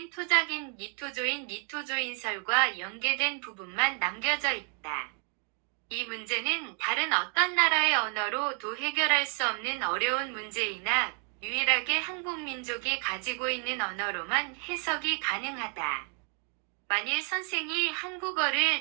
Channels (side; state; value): left; quieter; 39.5 dB